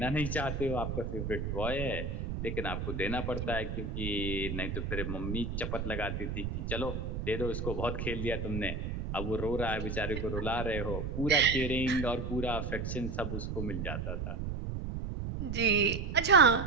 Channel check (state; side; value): noise; right; rumble, 4 dB below the sound